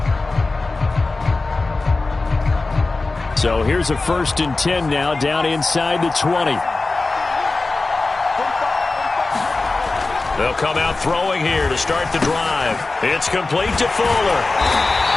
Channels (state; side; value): quieter; right; 3.5 dB